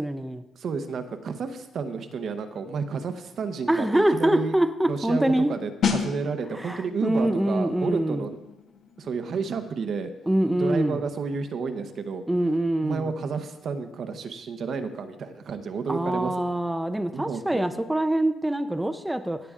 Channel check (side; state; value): both; normal; correlation 0.91